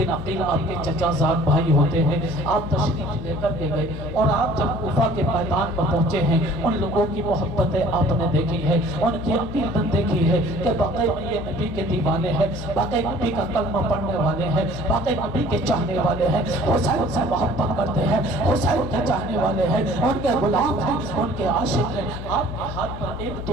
عقیل آپ کے چچا زاد بھائی ہوتے ہیں، آپ تشریف لے کر کے گئے اور آپ جب کوفہ کے میدان پر پہنچے ہیں، ان لوگوں کی محبتیں آپ نے دیکھی ہے، ان کی عقیدت دیکھی ہے کہ باقی یہ نبی کے دیوانے ہیں، باقی نبی کا کلمہ پڑھنے والے ہیں، باقی نبی کے چاہنے والے ہیں، حسین سے محبت کرتے ہیں، حسین کے چاہنے والے ہیں، ان کے غلام ہیں، ان کے عاشق ہیں۔ آپ کے ہاتھ پر ایک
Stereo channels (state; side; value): noise; left; hum, 9 dB below the sound